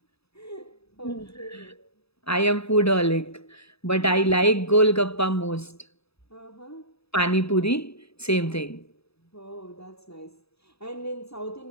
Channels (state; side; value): late; right; 0.78 ms